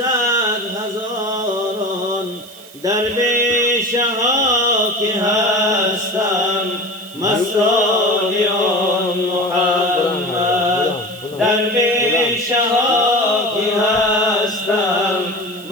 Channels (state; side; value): noise; right; hiss, 21 dB below the sound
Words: درویشه ها که هستم مستان آن محمد، درویشه ها که هستم